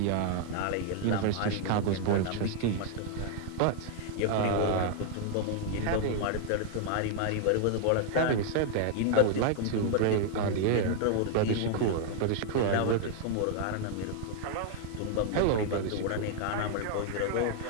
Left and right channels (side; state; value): both; different; correlation 0.00